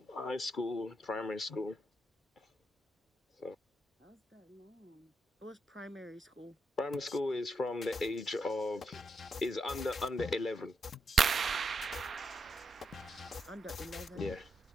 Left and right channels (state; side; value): normal; both; correlation 0.81